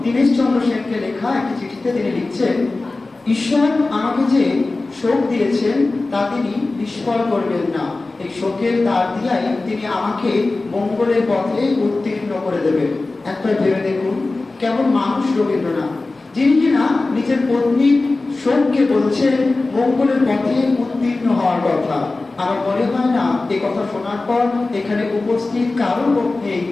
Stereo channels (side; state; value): right; quieter; 3.3 dB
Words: দীনেশচন্দ্র সেনকে লেখা একটি চিঠিতে তিনি লিখছেন, ঈশ্বর আমাকে যে শোক দিয়েছেন তা তিনি নিষ্ফল করবেন না। এই শোকের দ্বার দিয়াই তিনি আমাকে মঙ্গলের পথে উত্তীর্ণ করে দেবেন। একবার ভেবে দেখুন, কেমন মানুষ রবীন্দ্রনাথ, যিনি কিনা নিজের পত্নীর শোককে বলছেন মঙ্গলের পথে উত্তীর্ণ হওয়ার কথা। আমার মনে হয় না এই কথা শোনার পর এখানে উপস্থিত কারোর পক্ষে